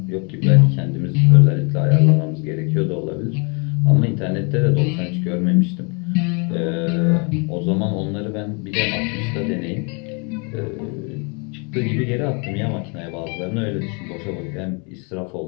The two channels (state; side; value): quieter; right; 34.3 dB